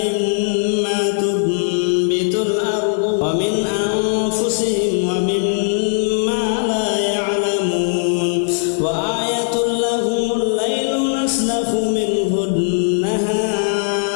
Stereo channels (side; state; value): right; silent; 59 dB below the other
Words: تنبت الأرض ومن أنفسهم ومما لا يعلمون وآية لهم الليل نسلخ منه